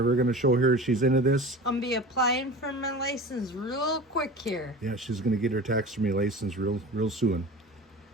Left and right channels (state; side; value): normal; both; correlation 0.35